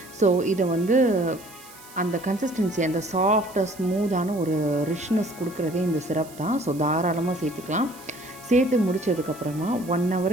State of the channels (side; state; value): right; noise; hiss, 20 dB below the sound